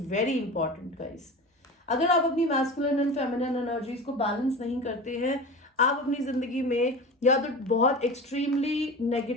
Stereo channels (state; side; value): normal; both; correlation 0.32